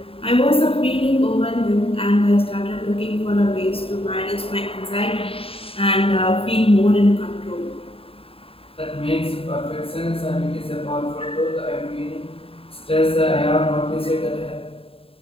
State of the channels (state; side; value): late; right; 0.27 ms